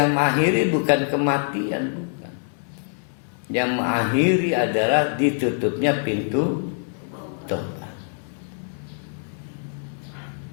mengakhiri bukan kematian, bukan. Yang mengakhiri adalah ditutupnya pintu tobat.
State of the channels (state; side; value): silent; right; 60 dB below the other